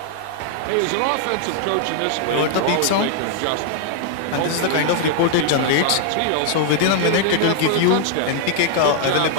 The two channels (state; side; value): different; both; correlation 0.00